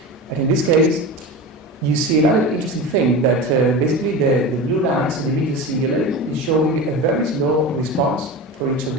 And in this case, you see another interesting thing, that basically the blue line, so the medial cingulate, is showing a very slow response for each of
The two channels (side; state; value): both; normal; correlation 0.28